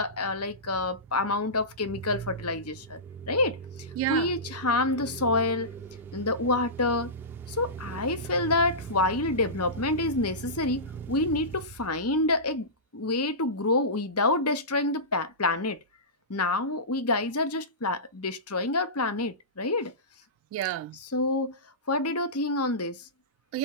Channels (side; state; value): both; normal; correlation -0.19